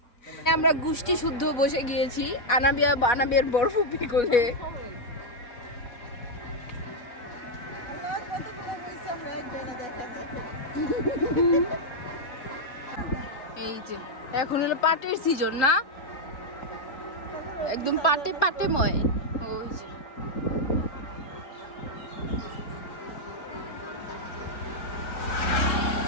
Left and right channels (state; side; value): late; right; 4.1 ms